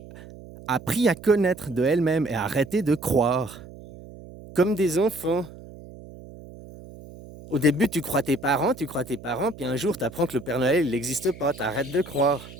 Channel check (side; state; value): right; noise; hum, 17 dB below the sound